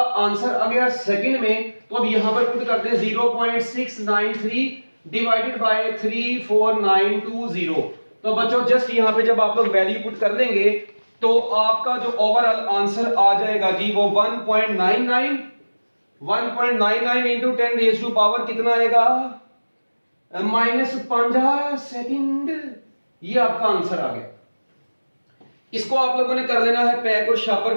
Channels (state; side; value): inverted; both; correlation -1.00